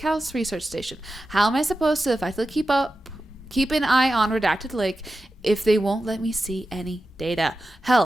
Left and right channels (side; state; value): both; normal; correlation 0.92